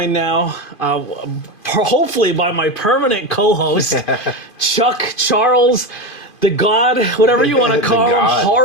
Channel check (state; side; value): late; right; 2.5 ms